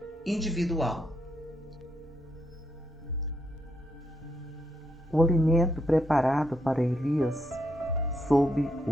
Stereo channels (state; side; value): normal; both; correlation 0.78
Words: individual. O alimento preparado para Elias, sob